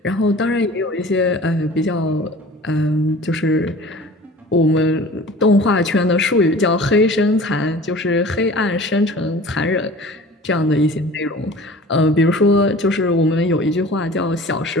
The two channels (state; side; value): normal; both; correlation 0.43